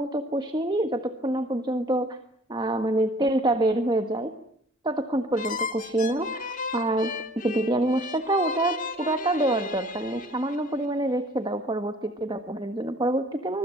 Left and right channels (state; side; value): normal; both; correlation 0.53